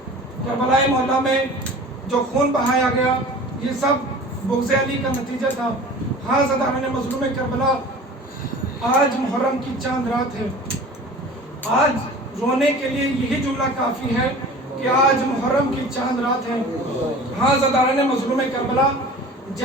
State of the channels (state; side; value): normal; both; correlation 0.41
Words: کربلا محلہ میں جو خون بہایا گیا یہ سب بغض علی کا نتیجہ تھا. ہاں زداران مظلوم کربلا, آج محرم کی چاند رات ہے. آج رونے کے لیے یہی جملہ کافی ہے کہ آج محرم کی چاند رات ہے. ہاں زداران مظلوم کربلا,